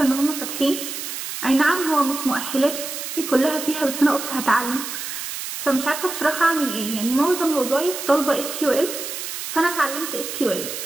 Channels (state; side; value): noise; right; hiss, 6 dB below the sound